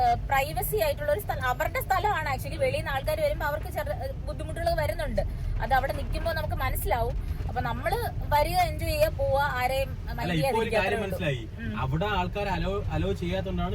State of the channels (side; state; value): both; identical; correlation 1.00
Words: പ്രൈവസി ആയിട്ടുള്ള ഒരു സ്ഥലം, അവരുടെ സ്ഥലമാണ്. ആക്ച്വലി വെളിയിൽ നിന്ന് ആൾക്കാർ വരുമ്പോൾ അവർക്ക് ബുദ്ധിമുട്ടുകൾ വരുന്നുണ്ട്. അത് അവിടെ നിൽക്കുമ്പോൾ നമുക്ക് മനസ്സിലാവും. അപ്പൊ നമ്മള് വരിക, എൻജോയ് ചെയ്യുക, പോവാ, ആരെയും മനസ്സിലായി. അവിടെ ആൾക്കാർ അലോ ചെയ്യാത്തോണ്ടാണ്